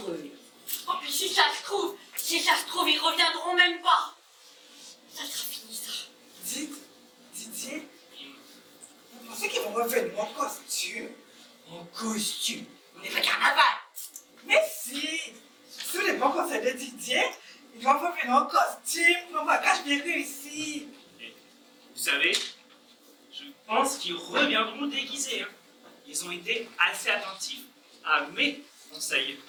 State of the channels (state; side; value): identical; both; correlation 1.00